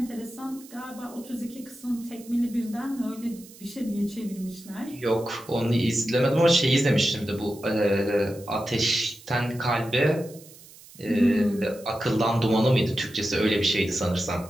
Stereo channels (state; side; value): noise; right; hiss, 21 dB below the sound